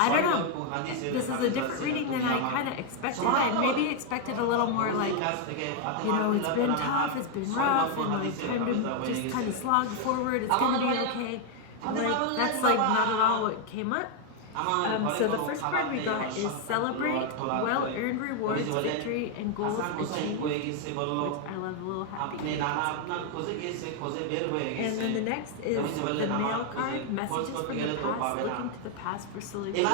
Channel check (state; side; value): different; both; correlation 0.01